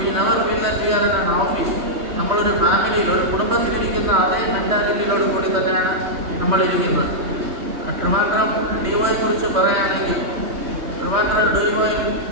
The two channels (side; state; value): left; late; 3.2 ms